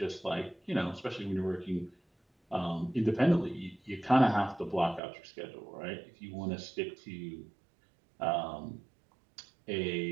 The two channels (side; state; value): left; drops out; at 5.0 s